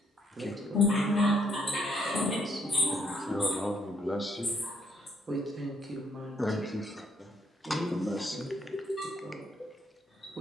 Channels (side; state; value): both; normal; correlation 0.71